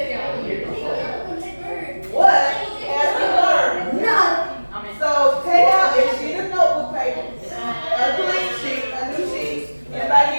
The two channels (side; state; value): both; inverted; correlation -1.00